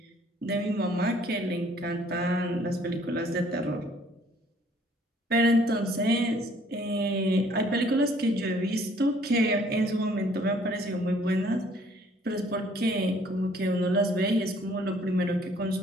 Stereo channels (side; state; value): both; normal; correlation 0.60